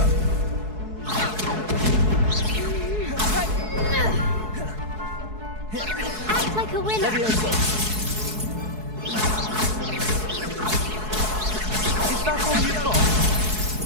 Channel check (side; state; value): left; late; 4.7 ms